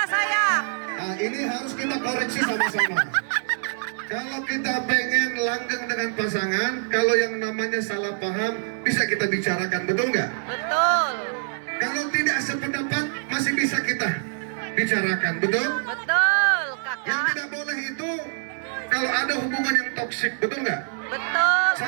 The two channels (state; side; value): silent; left; 62 dB below the other